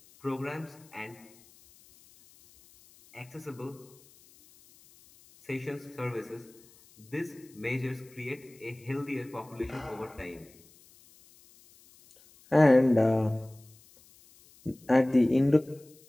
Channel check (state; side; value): noise; left; hiss, 27 dB below the sound